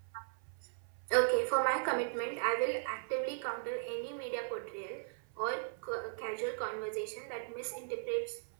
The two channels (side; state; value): left; silent; 53 dB below the other